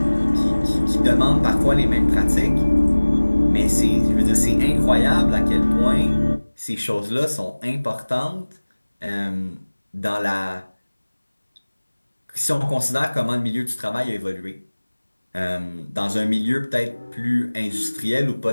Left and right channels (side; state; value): both; inverted; correlation -1.00